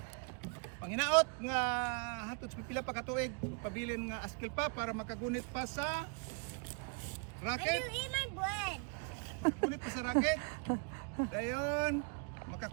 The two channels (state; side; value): quieter; left; 33.3 dB